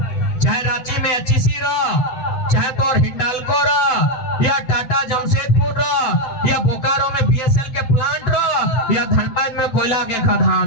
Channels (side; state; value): right; late; 7.9 ms